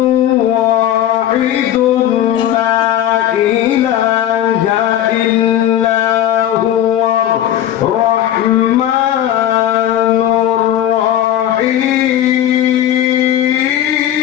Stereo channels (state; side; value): quieter; right; 11.4 dB